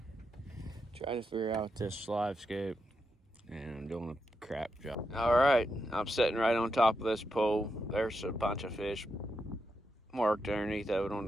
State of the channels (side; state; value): both; normal; correlation 0.85